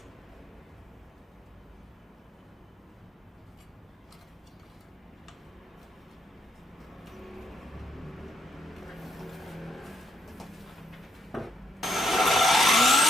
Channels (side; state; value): both; normal; correlation 0.76